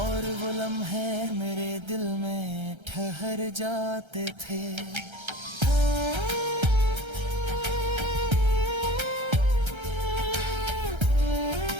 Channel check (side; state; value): left; late; 1.3 ms